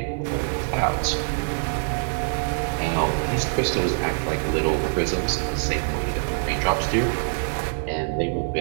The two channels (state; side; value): silent; left; 62 dB below the other